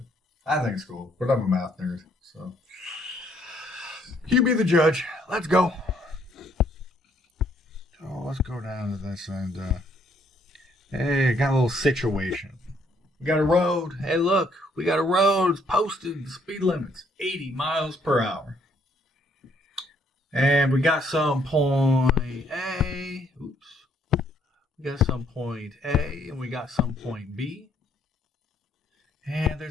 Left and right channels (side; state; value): both; normal; correlation 0.68